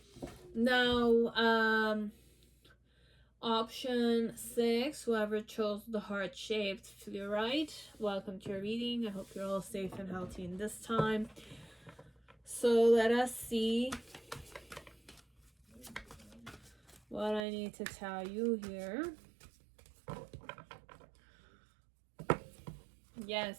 Now, option 6, whoever chose the heart-shaped fluorite, welcome to your reading. I hope you're all safe and healthy in this time. So let us see what I need to tell you here.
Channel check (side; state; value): left; drops out; at 17.4 s